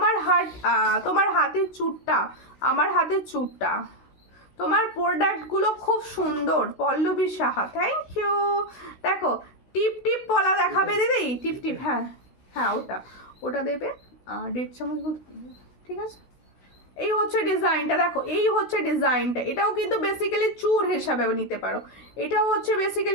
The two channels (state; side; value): late; right; 16 ms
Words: তোমার হাতের চুটটা, আমার হাতের চুটটা তোমার প্রোডাক্টগুলো খুব সুন্দর। Pallabi Saha, thank you. দেখো টিপ টিপ পলা দেখাবে দিদি, টিপ টিপ, হ্যাঁ হ্যাঁ ওটা ওটা দেবে 1.5 চামচ মতো, ঠিক আছে। এই হচ্ছে ডিজাইনটা, দেখো এই হচ্ছে ডিজাইনটা। এটাও কিন্তু বেসিক্যালি চূড় হিসাবে নিতে পারো। এটাও হচ্ছে